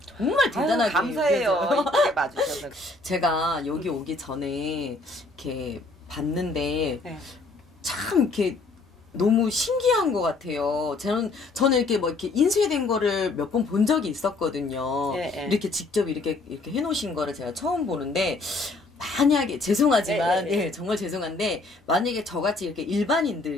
아유, 감사해요. 느껴져요. 이쁘게 봐주셔서. 제가 여기 오기 전에 이렇게 봤는데 네. 참 이렇게 너무 신기한 것 같아요. 저는 이렇게 뭐 이렇게 인쇄된 거를 몇 번 본 적이 있었거든요. 예, 예. 이렇게 직접 이렇게 해놓으신 거를 제가 처음 보는데 만약에 죄송하지만 예, 예, 예. 예, 정말 죄송한데 만약에 저같이 이렇게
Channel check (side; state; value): right; quieter; 3.3 dB